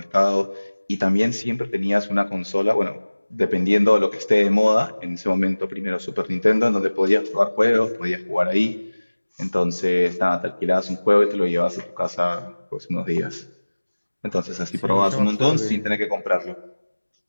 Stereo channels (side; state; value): both; inverted; correlation -1.00